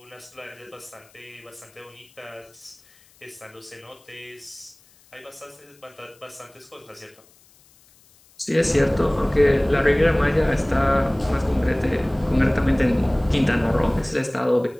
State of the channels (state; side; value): noise; left; hiss, 29 dB below the sound